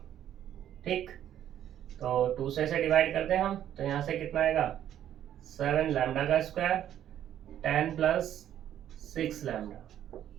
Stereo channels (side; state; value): left; quieter; 10.9 dB